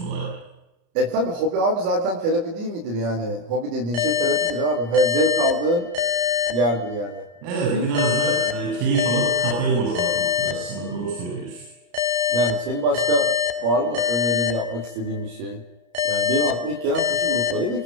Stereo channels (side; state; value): left; late; 33 ms